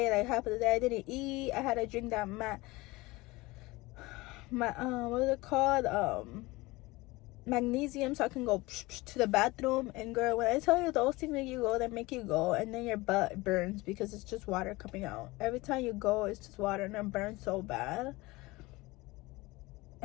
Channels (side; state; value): right; quieter; 21.6 dB